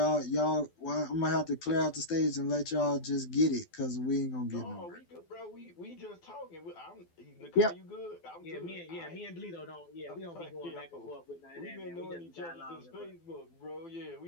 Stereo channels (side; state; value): right; late; 12 ms